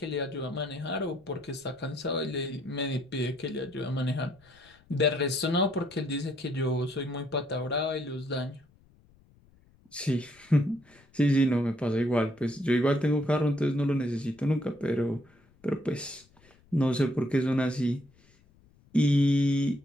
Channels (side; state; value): left; noise; rumble, 30 dB below the sound